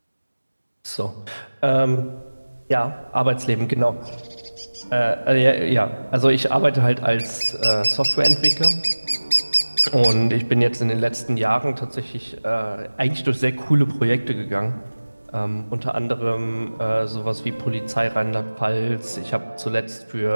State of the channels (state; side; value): inverted; both; correlation -1.00